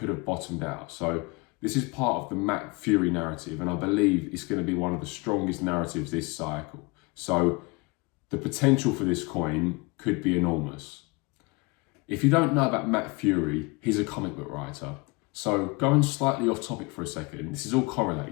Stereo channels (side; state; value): right; quieter; 27.1 dB